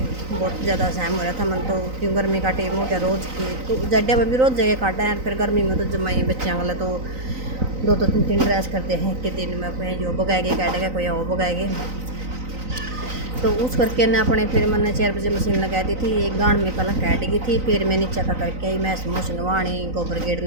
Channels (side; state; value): left; late; 3.9 ms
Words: बहुत ज़्यादा सहम हो रहा था मन। तो क्यों गर्मी का टाइम हो गया रोज़ की। तो जड्डे में भी रोज़ जगह काटा है। फिर गर्मी में तो जमाई बच्चों वाला तो 2-3 ड्रेस करते हैं कि दिन में कोई जो बगाएगे काटेगा, कोई और बगाएगे। तो उस करके ने अपने फिर मैंने 4 बजे मशीन लगा दी थी। एक गांड में पहले कैट गई थी। फिर मैं नीचा का करके आई, मैं समोस नवाणी गोबर